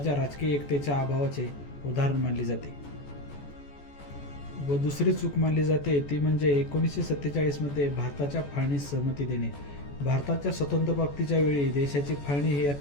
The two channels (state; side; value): late; right; 14 ms